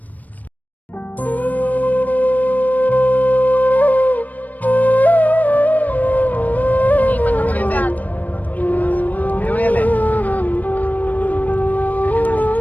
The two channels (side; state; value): right; late; 0.078 ms